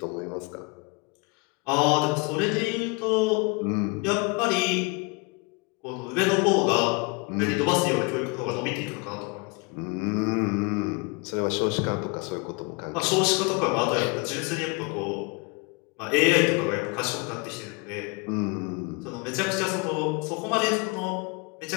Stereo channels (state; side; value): quieter; right; 29.1 dB